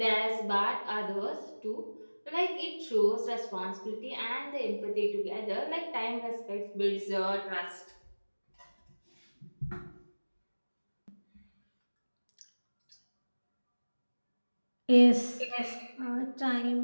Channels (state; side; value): inverted; both; correlation -1.00